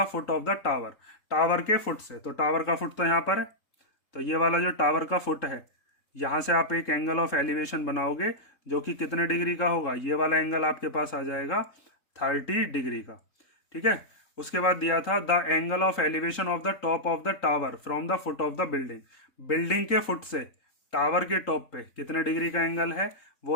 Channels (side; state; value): right; late; 3.8 ms